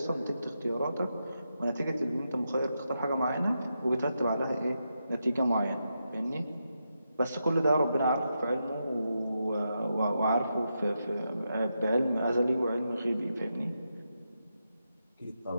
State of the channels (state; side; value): inverted; both; correlation -0.85